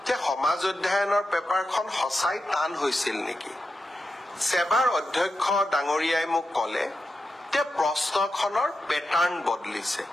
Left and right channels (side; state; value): both; normal; correlation 0.89